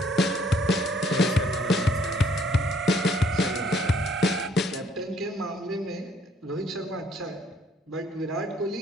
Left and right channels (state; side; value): normal; both; correlation 0.64